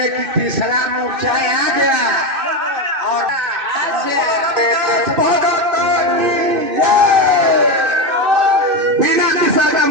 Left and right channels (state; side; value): late; left; 2.6 ms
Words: कि तीसरा मोर्चा आ गया और बिना तीसरा का